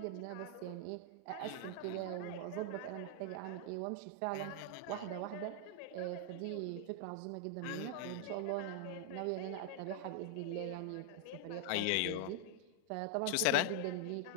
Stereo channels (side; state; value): both; different; correlation 0.00